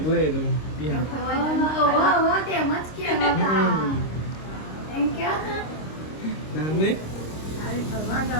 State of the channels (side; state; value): right; late; 26 ms